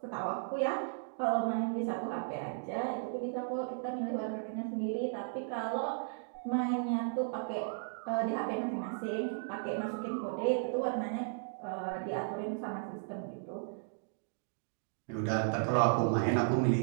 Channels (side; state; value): left; silent; digital silence